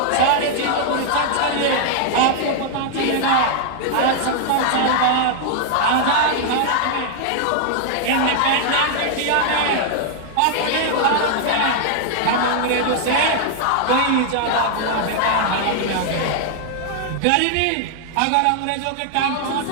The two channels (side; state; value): both; different; correlation -0.01